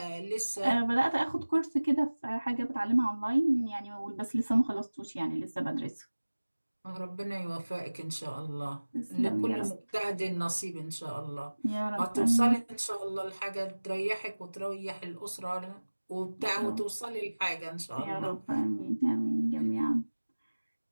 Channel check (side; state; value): both; inverted; correlation -1.00